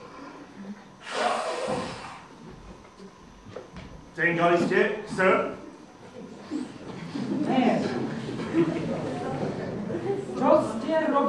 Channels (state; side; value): identical; both; correlation 1.00